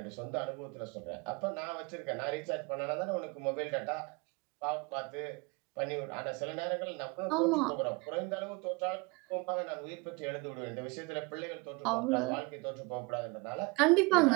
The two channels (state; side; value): quieter; left; 27.9 dB